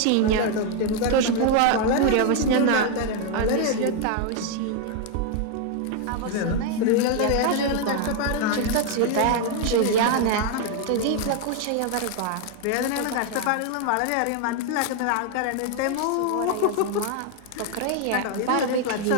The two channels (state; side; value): different; both; correlation 0.01